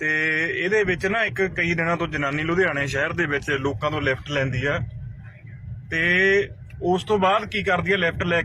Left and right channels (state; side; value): identical; both; correlation 1.00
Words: ਇਹਦੇ ਵਿੱਚ ਨਾ ਇੱਕ ਕਈ ਦਿਨਾਂ ਤੋਂ ਜਨਾਨੀ ਲੁਧਿਆਣੇ ਸ਼ਹਿਰ ਦੇ ਵਿੱਚ ਲੋਕਾਂ ਤੋਂ ਲਿਫਟ ਲੈਂਦੀ ਆ ਤੇ ਉਸ ਤੋਂ ਬਾਅਦ ਕੀ ਕਰਦੀ ਆ ਲਿਫਟ ਲੈ